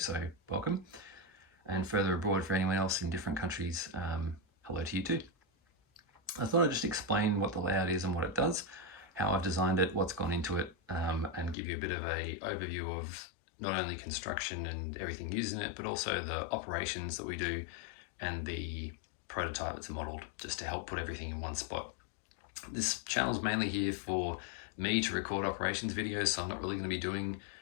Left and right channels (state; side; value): drops out; right; at 11.6 s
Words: welcome. And further abroad for anyone else in different countries, hello to you too. I thought I'd just explain what the layout is and what it does, how I've designed it, what's gone into it, and give you a bit of an overview of not only construction and everything used in it, but also the operations that we do and the prototype that's modeled, just to help put everything in one spot. This channel's mainly here for me to record operations videos, so I'm not really going to be doing